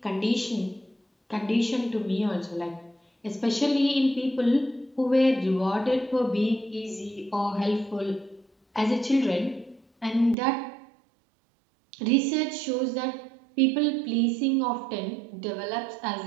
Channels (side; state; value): left; drops out; at 10.4 s